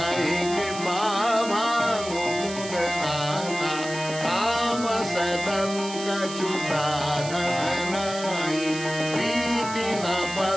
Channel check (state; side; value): noise; right; hiss, 11 dB below the sound